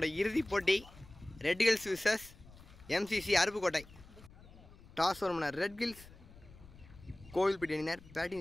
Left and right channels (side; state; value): left; noise; rumble, 21 dB below the sound